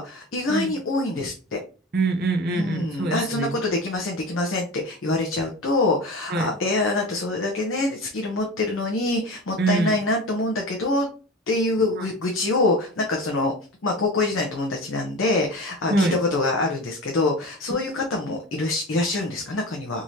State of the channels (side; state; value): both; normal; correlation 0.30